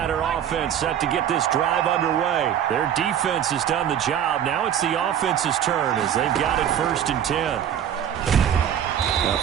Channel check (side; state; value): left; quieter; 9.7 dB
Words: offense set to get this drive underway. Their defense has done the job. Now it's the offense's turn as they've got it 1st and 10. A